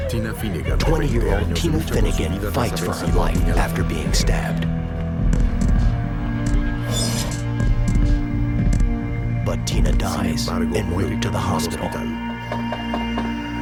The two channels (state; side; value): identical; both; correlation 1.00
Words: 20-year-old Tina Finnegan fights for her life after being stabbed. But Tina dies en route to the hospital.